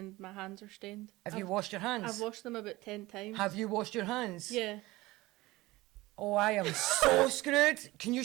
my hands are stained. Have you washed your hands? I've washed them about 10 times. Have you washed your hands? Yeah. Oh, I am so screwed. Can you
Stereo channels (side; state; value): left; quieter; 19.8 dB